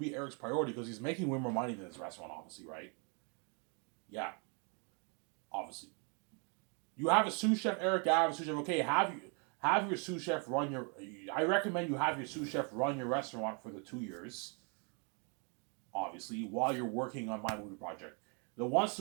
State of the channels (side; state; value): left; quieter; 36.1 dB